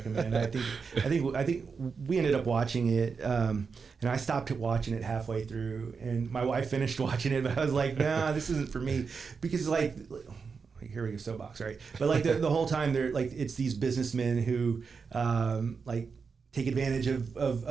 I think we ended up watching it, and I stopped watching it halfway through, and my wife finished watching it, but I was like, nah, this isn't for me, because like, here we go, soapbox, right? But like the whole time they're like, it's these businessmen who like take advantage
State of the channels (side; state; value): left; quieter; 5.3 dB